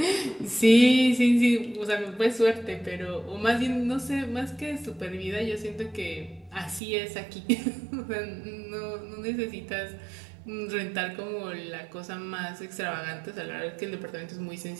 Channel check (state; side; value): drops out; left; at 6.8 s